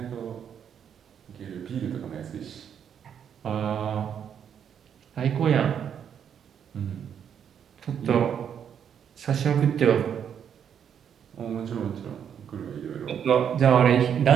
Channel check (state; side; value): quieter; left; 8.3 dB